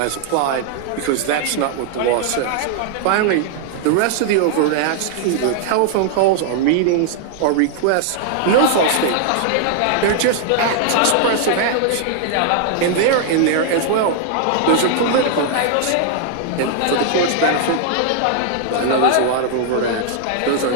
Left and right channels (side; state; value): both; different; correlation 0.00